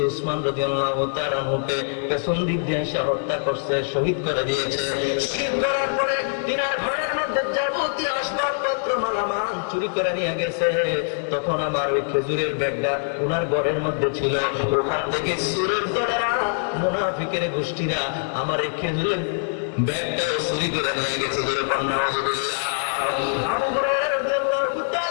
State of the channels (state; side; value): silent; right; digital silence